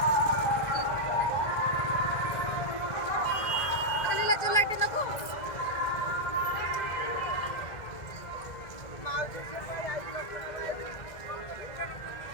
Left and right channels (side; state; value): right; late; 1.6 ms